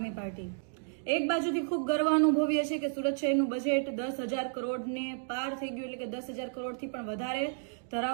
પાર્ટી. એક બાજુથી ખૂબ ગર્વ અનુભવીએ છીએ કે સુરત શહેરનું બજેટ 10,000 કરોડને પાર થઈ ગયું, એટલે કે 10,000 કરોડથી પણ વધારે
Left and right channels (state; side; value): silent; left; digital silence